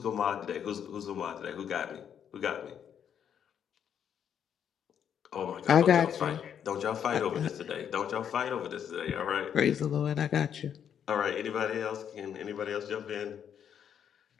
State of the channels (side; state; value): right; quieter; 8.6 dB